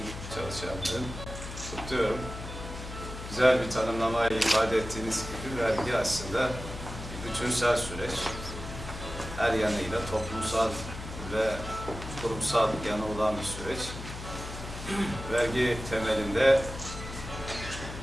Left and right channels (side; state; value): left; noise; hum, 10 dB below the sound